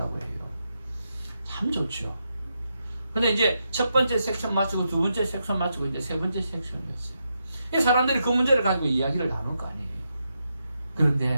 해요. 참 좋죠. 근데 이제 첫 번째 섹션 마치고 두 번째 섹션 마치고 이제 세 번째 섹션이었어요. 이 사람들이 그 문제를 가지고 이야기를 나눌 거 아니에요.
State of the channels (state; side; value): inverted; both; correlation -0.84